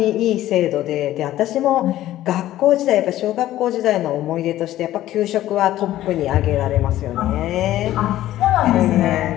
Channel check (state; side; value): quieter; right; 14.0 dB